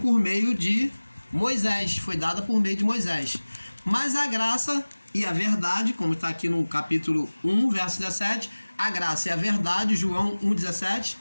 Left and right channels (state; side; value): inverted; both; correlation -1.00